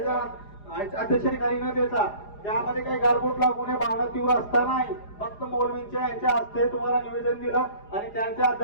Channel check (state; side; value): late; right; 4.9 ms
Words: अध्यक्षतेखाली न देता त्यामध्ये काही गालबोट लागू नये, भावना तीव्र असतानाही फक्त मौलवींच्या यांच्या हस्ते तुम्हाला निवेदन दिलं आणि त्यांच्या